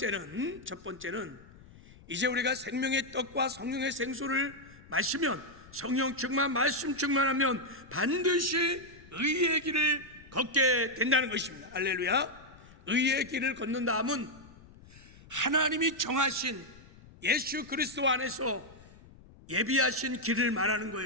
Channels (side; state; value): left; noise; rumble, 22 dB below the sound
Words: 이제 우리가 생명의 떡과 성령의 생수를 마시면, 성령 충만, 말씀 충만하면 반드시 의의 길을 걷게 된다는 것입니다. 할렐루야. 의의 길을 걷는 다음은 하나님이 정하신 예수 그리스도 안에서 예비하신 길을 말하는